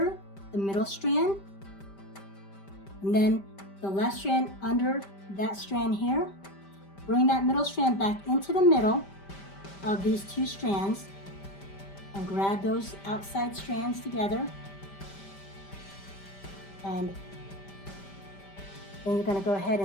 the middle strand, and then the left strand under that strand here. Bring that middle strand back into the middle of these 2 strands and grab those outside strands together, and then you're going to go ahead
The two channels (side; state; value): right; late; 5.1 ms